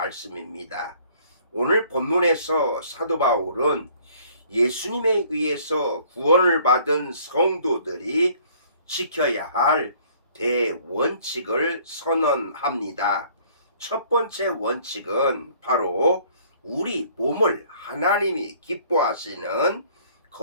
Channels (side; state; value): both; inverted; correlation -0.57